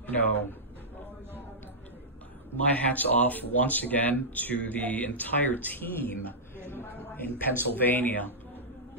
You know, my hat's off once again to the entire team in Pennsylvania.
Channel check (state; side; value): normal; both; correlation -0.12